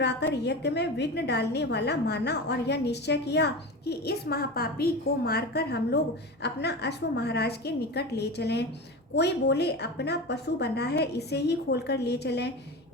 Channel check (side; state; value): both; normal; correlation 0.27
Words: यज्ञ में विघ्न डालने वाला माना और यह निश्चय किया कि इस महापापी को मारकर हम लोग अपना अश्व महाराज के निकट ले चलें। कोई बोले, अपना पशु बंधा है, इसे ही खोलकर ले चलें।